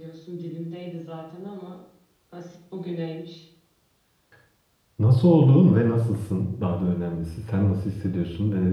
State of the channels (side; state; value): both; identical; correlation 1.00